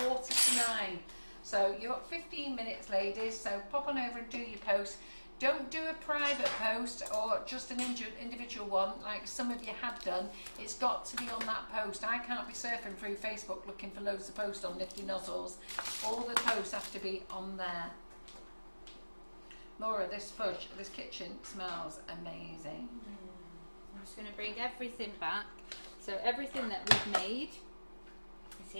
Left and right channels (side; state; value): both; inverted; correlation -1.00